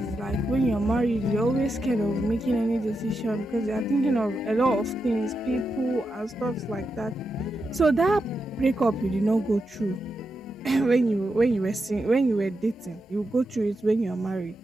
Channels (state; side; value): normal; both; correlation 0.87